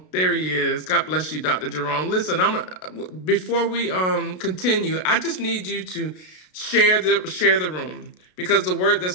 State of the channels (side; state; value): right; late; 33 ms